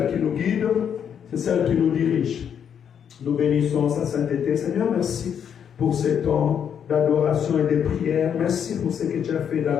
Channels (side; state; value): right; quieter; 8.2 dB